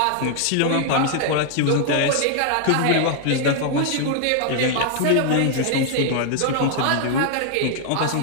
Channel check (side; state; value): both; different; correlation 0.00